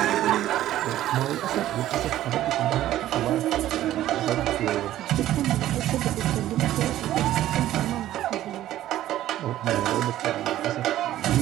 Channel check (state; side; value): quieter; left; 13.5 dB